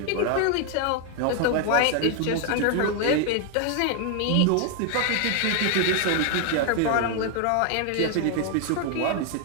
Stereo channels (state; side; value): different; both; correlation 0.00